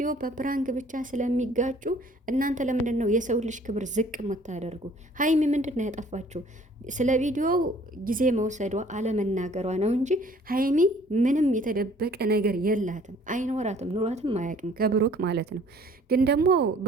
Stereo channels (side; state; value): both; normal; correlation 0.55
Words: በፕራንክ ብቻ ስለሚጋጩ እናንተ ለምንድን ነው የሰው ልጅ ክብር ዝቅ የምታደርጉ? ሀይሚ ምንድን ነው ያጠፋችው? ስለ ቪዲዮው ጊዜ መውሰዷ አለመናገሯ ነው እንጂ ሀይሚ ምንም የተደበቀ ነገር የላትም፣ አይኖራትም፣ ኑሯትም አያውቅም ከብሩክ ማለት ነው። ግን ደግሞ